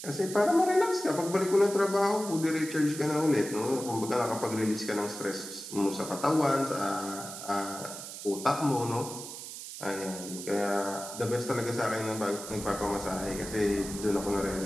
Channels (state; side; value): noise; right; hiss, 10 dB below the sound